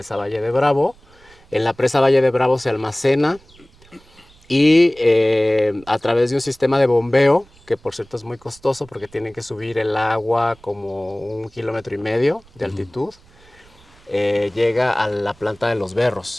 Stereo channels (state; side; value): noise; right; rumble, 27 dB below the sound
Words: Valle de Bravo. En la presa Valle de Bravo se almacena y a través de un sistema de bombeo, que por cierto es muy costoso porque tienen que subir el agua como 1,5 kilómetros de altitud, llega a la planta de Los